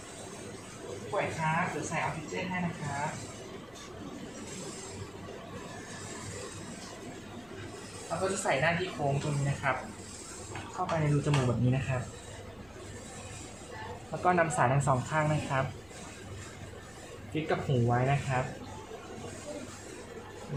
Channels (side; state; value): left; noise; hum, 28 dB below the sound